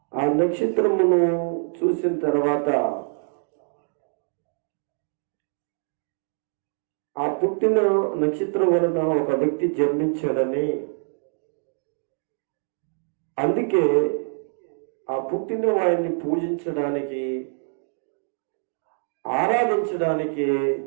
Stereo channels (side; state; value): left; silent; 62 dB below the other